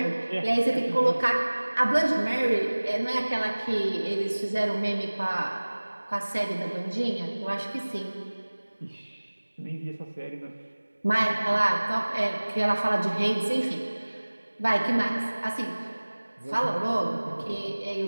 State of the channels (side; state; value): both; inverted; correlation -1.00